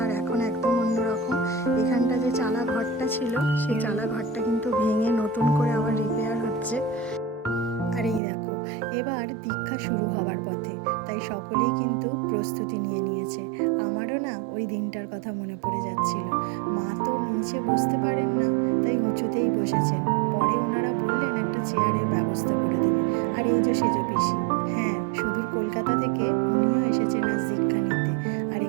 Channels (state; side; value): drops out; left; at 8.2 s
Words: আর এখন একদম অন্যরকম। এখানটা যে চালা ঘরটা ছিল, সেই চালা ঘরটা কিন্তু ভেঙে নতুন করে আবার রিপেয়ার হচ্ছে। আর এই দেখো, এবার দীক্ষা শুরু হওয়ার পথে, তাই সকলেই কিন্তু প্রস্তুতি নিয়ে নিয়েছে। আমারও না ওই দিনটার কথা মনে পড়ে যাচ্ছিল। মা তো নিচে বসতে পারেন না, তাই উঁচুতেই বসেছেন। পরে ওনারা বললেন একটা চেয়ারের ব্যবস্থা করে দেবে। আর এই যে সেজ পিসি, হ্যাঁ, সুদূর কলকাতা থেকে উনিও এসেছেন আজ দীক্ষা নিতে। আর